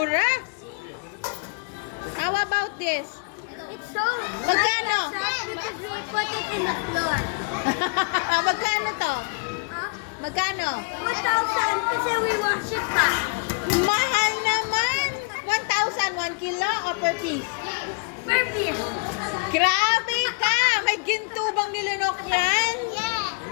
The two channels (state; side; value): quieter; right; 34.1 dB